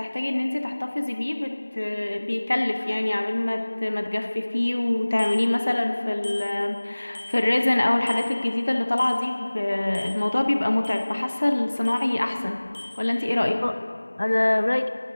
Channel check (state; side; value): inverted; both; correlation -1.00